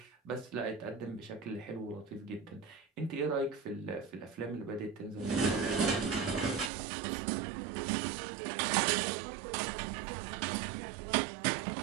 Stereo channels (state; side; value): drops out; left; at 6.7 s